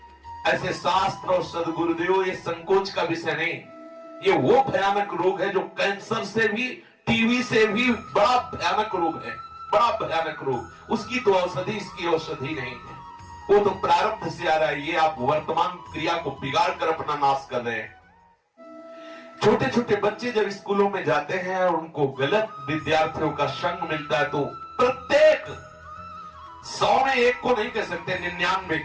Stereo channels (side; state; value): both; identical; correlation 1.00